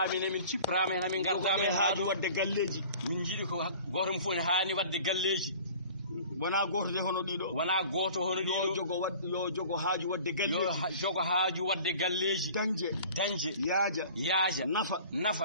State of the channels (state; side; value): inverted; both; correlation -0.45